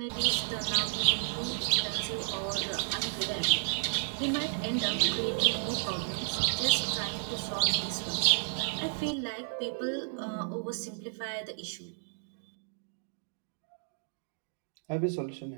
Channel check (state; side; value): silent; left; digital silence